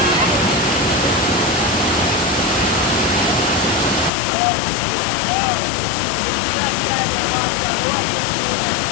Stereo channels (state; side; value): drops out; right; at 4.1 s